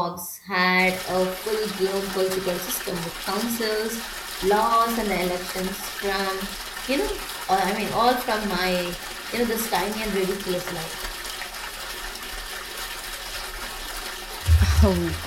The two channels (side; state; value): both; identical; correlation 1.00